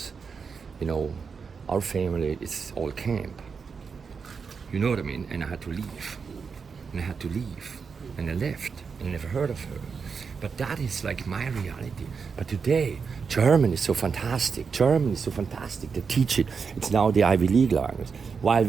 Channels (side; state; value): left; quieter; 5.6 dB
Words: our family is all camp. You know what I mean? And I had to leave. And I left. And I never heard of her. But that is like my reality. But today, German is so fantastic. They teach it. It's now the Ivy League language. While